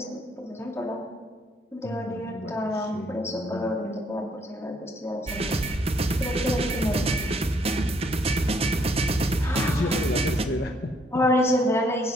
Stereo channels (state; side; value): normal; both; correlation 0.67